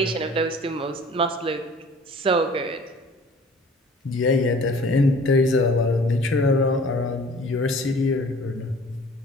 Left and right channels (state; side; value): normal; both; correlation 0.49